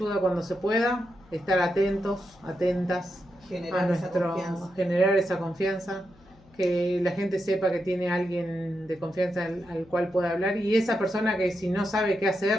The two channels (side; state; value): left; noise; hum, 27 dB below the sound